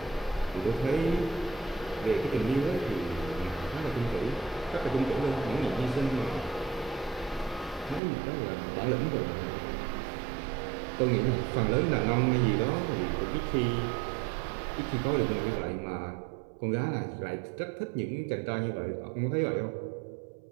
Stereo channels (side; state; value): left; drops out; at 8.0 s